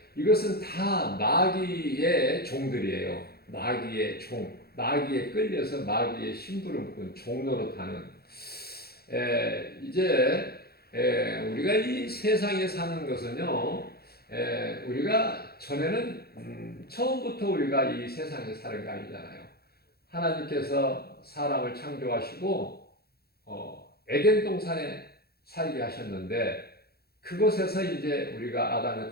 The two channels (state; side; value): late; right; 0.46 ms